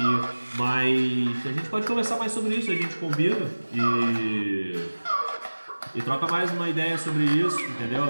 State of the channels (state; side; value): inverted; both; correlation -1.00